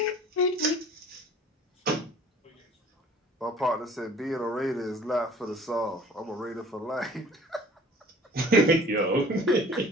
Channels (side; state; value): both; normal; correlation 0.49